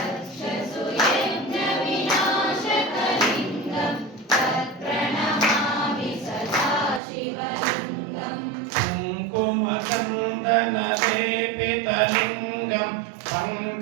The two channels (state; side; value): drops out; left; at 7.0 s